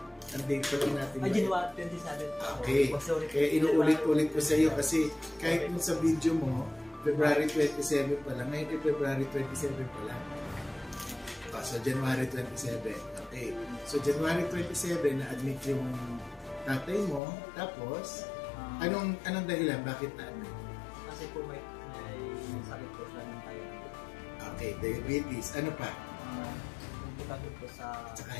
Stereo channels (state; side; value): drops out; right; at 17.2 s